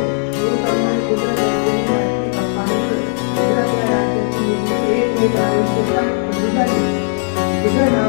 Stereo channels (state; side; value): silent; right; digital silence